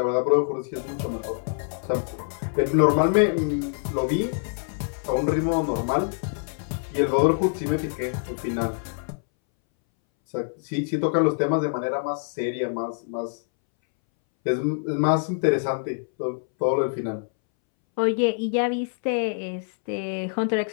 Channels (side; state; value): right; silent; 62 dB below the other